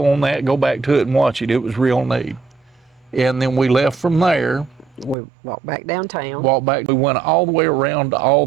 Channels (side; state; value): left; drops out; at 5.2 s